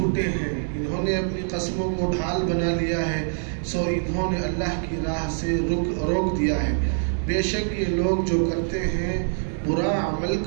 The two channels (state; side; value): silent; left; digital silence